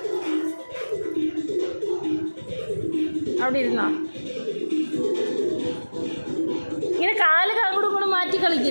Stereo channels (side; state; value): both; inverted; correlation -1.00